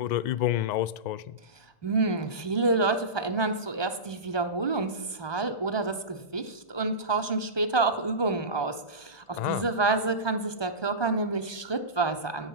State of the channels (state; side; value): late; right; 1.3 ms